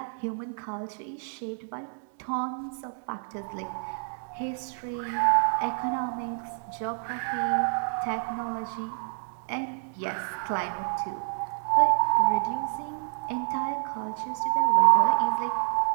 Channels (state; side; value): silent; left; digital silence